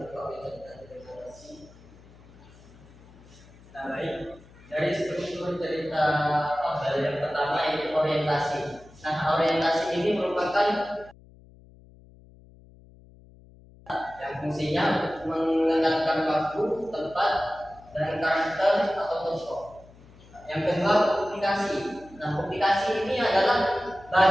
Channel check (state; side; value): noise; left; hum, 24 dB below the sound